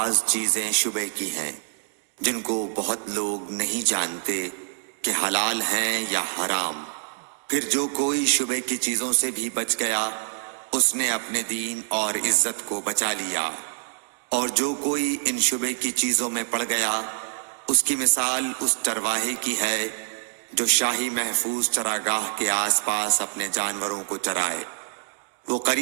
چیزیں شبہ کی ہیں جن کو بہت لوگ نہیں جانتے کہ حلال ہیں یا حرام۔ پھر جو کوئی شبہ کی چیزوں سے بھی بچ گیا اس نے اپنے دین اور عزت کو بچا لیا، اور جو کوئی ان شبہ کی چیزوں میں پڑ گیا اس کی مثال اس چرواہے کی ہے جو شاہی محفوظ چراگاہ کے آس پاس اپنے جانوروں کو چرائے۔ وہ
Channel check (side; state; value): left; silent; 61 dB below the other